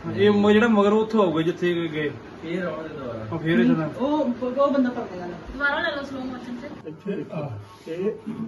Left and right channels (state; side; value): identical; both; correlation 1.00